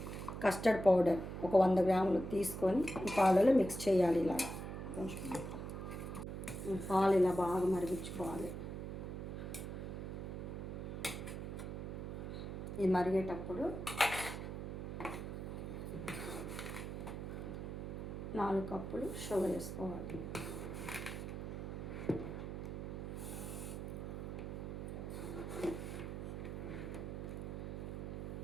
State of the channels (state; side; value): noise; right; hum, 6 dB below the sound